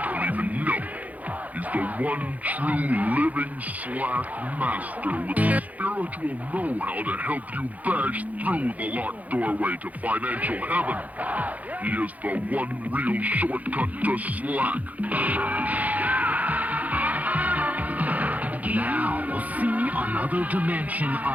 don't even know it. He's the one true living slack master with the spiritual know-how to help you bash through the locked doorway to financial heaven. He is the one real shortcut to slack. Now, see another dimension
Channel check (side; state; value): left; late; 0.076 ms